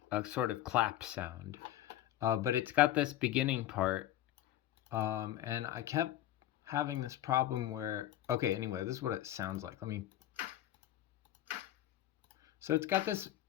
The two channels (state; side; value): quieter; right; 13.2 dB